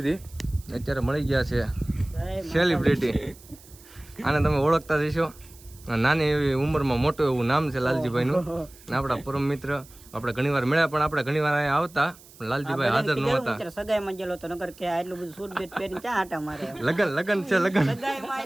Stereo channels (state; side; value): noise; right; hiss, 23 dB below the sound